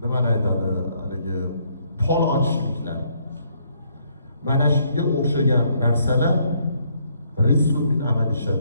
nimani aytadi, haligi pol ochishliklar. Mana shunga o'xshagan narsalar rizqun min amalish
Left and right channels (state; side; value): inverted; both; correlation -0.70